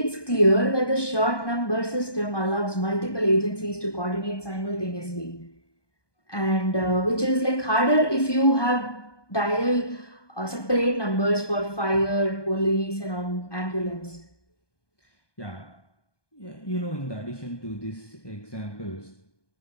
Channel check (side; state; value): right; late; 1.2 ms